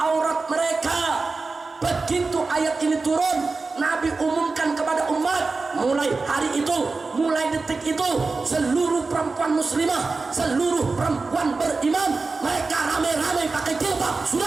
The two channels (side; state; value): left; quieter; 4.0 dB